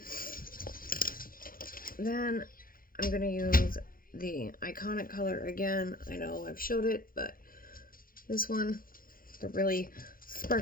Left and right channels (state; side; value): late; right; 0.41 ms